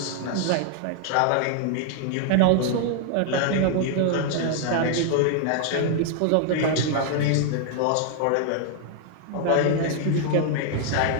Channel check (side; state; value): both; different; correlation 0.00